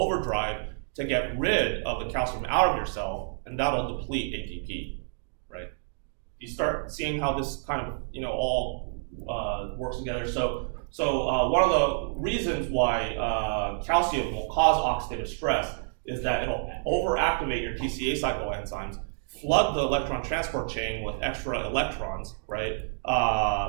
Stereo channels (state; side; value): silent; left; digital silence